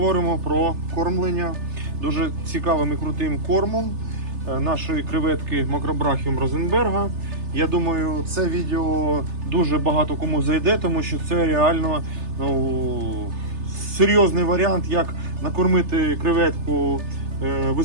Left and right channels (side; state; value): left; late; 3.3 ms